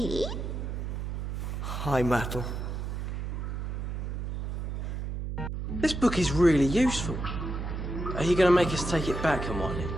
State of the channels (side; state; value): right; noise; hum, 4 dB below the sound